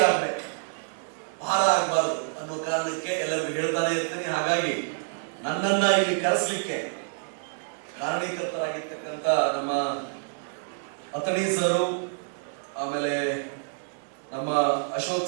ಆಗ್ಬೇಕು, ಭಾರ ಆಗಬಾರದು ಅನ್ನೋ ಕಾರಣಕ್ಕೆ ಎಲ್ಲರಿಗೂ ಹೇಳ್ತಾನೆ ಇರ್ತೀನಿ. ಹಾಗಾಗಿ ನನ್ನನ್ನ ಇಲ್ಲಿ ಕರೆಸಲಿಕ್ಕೆ ಕಾರಣೀಕರ್ತರಾಗಿರ್ತಕ್ಕಂಥ ನಮ್ಮ ಅತಣಿ ಸರು, ಆಮೇಲೆ ನಮ್ಮ Ashok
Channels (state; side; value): silent; left; digital silence